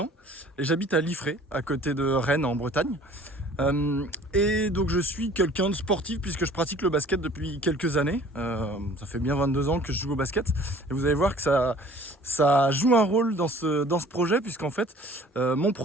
et j'habite à Liffré, à côté de Rennes en Bretagne. Et donc je suis quelqu'un de sportif puisque je pratique le basket depuis quelques années. Ça fait bien 22 ans que je joue au basket. Et vous allez voir que ça joue un rôle dans ce projet puisqu'en fait mon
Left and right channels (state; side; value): normal; both; correlation 0.51